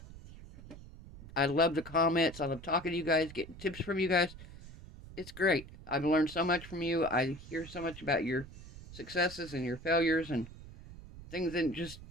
I love the comments. I love talking to you guys, getting tips from you guys. It's great. I've learned so much from you. I hear so much about your successes and your failures and things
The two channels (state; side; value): noise; right; rumble, 16 dB below the sound